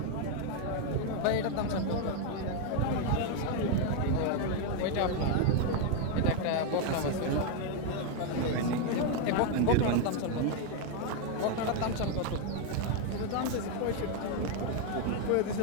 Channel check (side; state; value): both; different; correlation 0.01